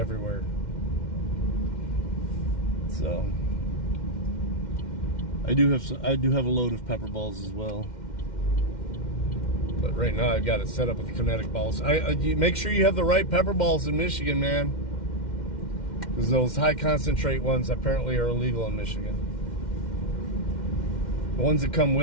So I do have a load of pepper balls as well, but right now I've got it set up with kinetic balls. You make sure you have the right pepper balls in Michigan, man, because those high concentrate ones apparently are illegal in Michigan. The ones that come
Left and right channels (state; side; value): late; right; 2.1 ms